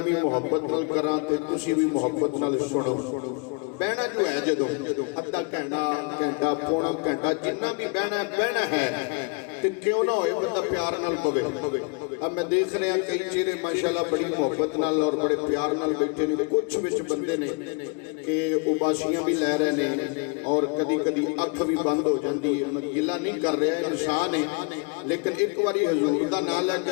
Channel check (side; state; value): right; quieter; 33.0 dB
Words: भी मुहब्बत नाल करां ते तुसीं भी मुहब्बत नाल सुनो। बहना जो है जदों अद्धा घंटा पौना घंटा जिन्ना भी बहना है ते क्यों ना होए बंदा प्यार नाल पवे। अब मैं देख रहा कई चेहरे माशाल्लाह बड़ी मुहब्बत नाल और बड़े प्यार नाल बैठे ने। कुछ विच बंदे ने कि उबासियां भी लै रहे ने और कदी कदी अख भी बंद हो जाती है। मैं गिला नहीं कर रहा, इंसान है, लेकिन एक बारी हजूर का नाम